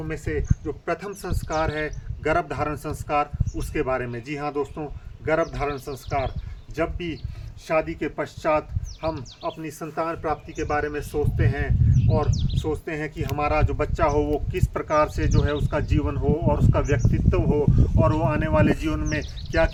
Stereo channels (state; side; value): identical; both; correlation 1.00